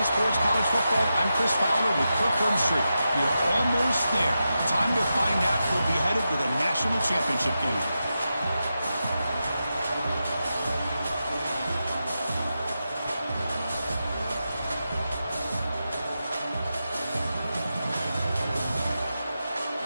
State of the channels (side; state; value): both; inverted; correlation -0.89